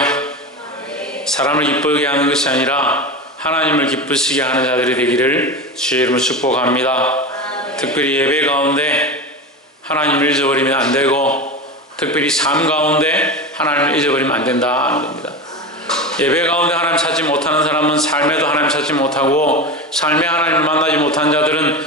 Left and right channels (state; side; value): normal; both; correlation 0.24